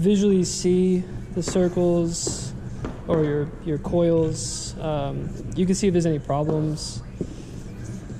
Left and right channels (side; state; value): both; identical; correlation 1.00